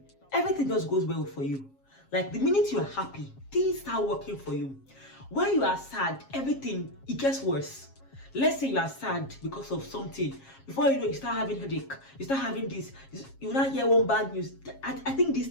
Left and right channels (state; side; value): late; right; 7.4 ms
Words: everything just goes well for you? Like, the minute you are happy, things start working for you. When you are sad, everything, it gets worse. Let's say you are sad because of something. Before you know, you start having headache. You start having this. You now hear one bad news. I think